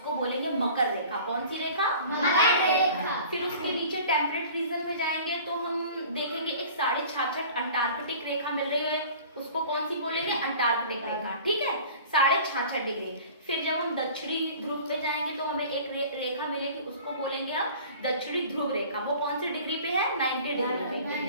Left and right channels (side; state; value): both; inverted; correlation -0.44